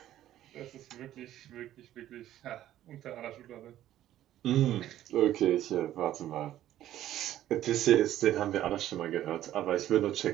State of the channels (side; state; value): left; quieter; 12.8 dB